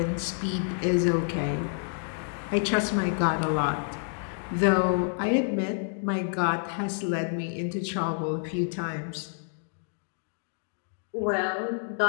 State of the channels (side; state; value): right; silent; digital silence